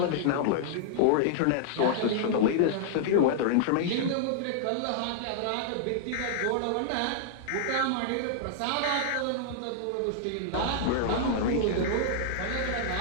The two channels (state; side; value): different; both; correlation -0.01